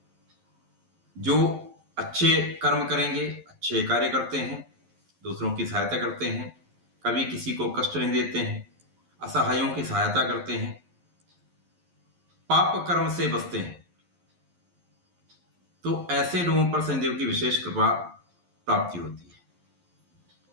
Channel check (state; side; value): late; left; 11 ms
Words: जो अच्छे कर्म करेंगे, अच्छे कार्य करते हैं, दूसरों की सहायता करते हैं, कभी किसी को कष्ट नहीं देते हैं, असहायों की सहायता करते हैं, पाप कर्म से बचते हैं, तो ऐसे लोगों पर शनिदेव की विशेष कृपा प्राप्ति होती है।